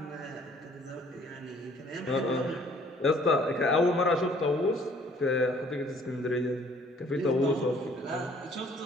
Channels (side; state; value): both; normal; correlation 0.58